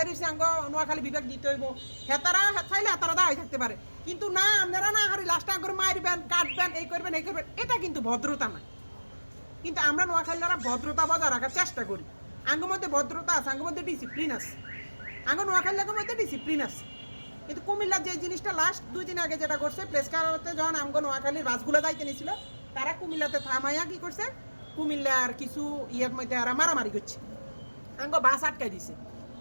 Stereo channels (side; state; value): both; inverted; correlation -1.00